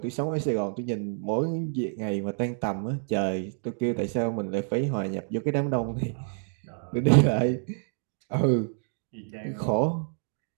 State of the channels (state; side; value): silent; left; digital silence